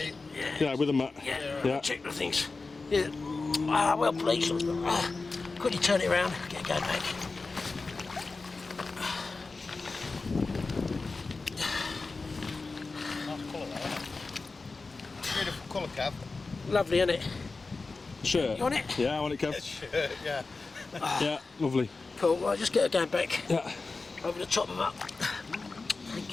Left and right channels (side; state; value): right; quieter; 3.9 dB